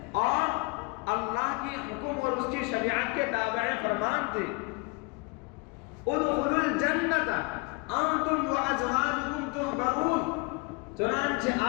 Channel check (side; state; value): right; quieter; 28.1 dB